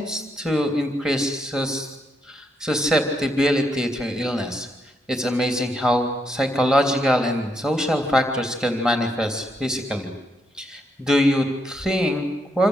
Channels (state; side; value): normal; both; correlation 0.78